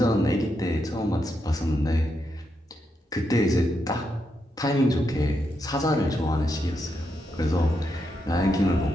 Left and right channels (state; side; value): normal; both; correlation 0.83